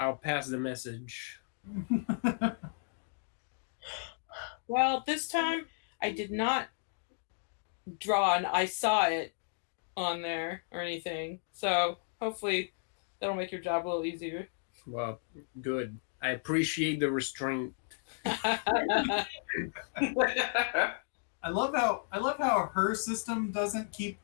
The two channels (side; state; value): right; silent; digital silence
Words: I'll pass the message. Well, this time I did not draw and I saw it on there or anything. So hopefully that'll make your job a little easier. Well, good. I appreciate the restraint. I love how her system doesn't keep